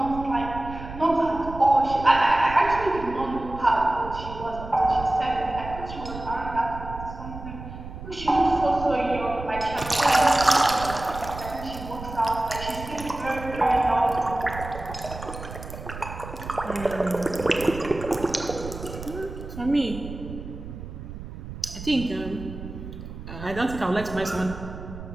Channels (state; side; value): noise; right; rumble, 11 dB below the sound